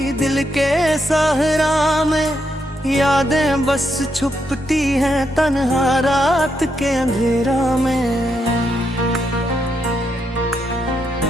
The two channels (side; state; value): both; normal; correlation 0.80